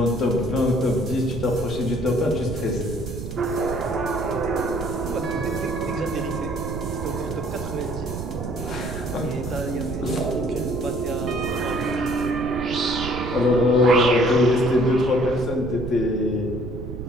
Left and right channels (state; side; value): noise; right; rumble, 8 dB below the sound